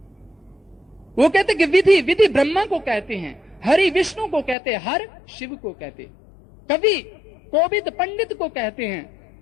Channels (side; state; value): right; drops out; at 4.5 s